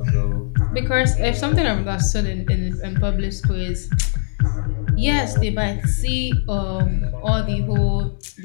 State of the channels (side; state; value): right; silent; digital silence